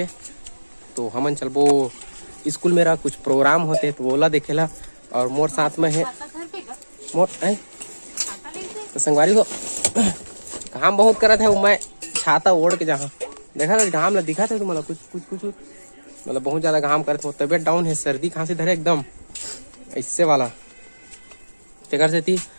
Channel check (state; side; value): inverted; both; correlation -1.00